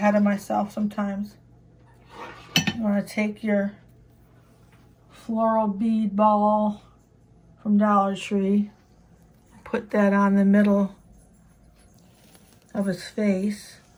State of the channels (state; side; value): identical; both; correlation 1.00